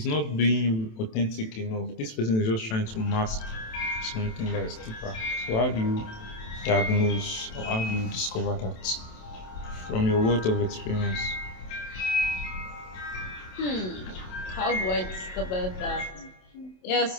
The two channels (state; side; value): late; right; 27 ms